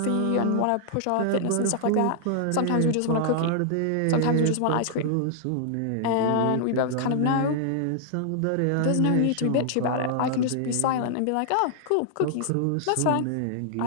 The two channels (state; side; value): different; both; correlation -0.01